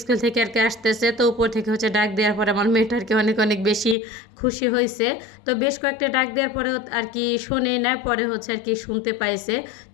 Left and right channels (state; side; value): drops out; right; at 4.0 s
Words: স্কুল থেকে আর কি আসতেছে, তো উপর থেকে ডাক দেওয়ার পরে আমার মেয়েটা আর কি অনেক অনেক বেশি খুশি হয়েছে। তো বেশ কয়েকটা ডাক দেওয়ার পরে আর কি শোনে না, পরে আর কি শুনতে পাইছে।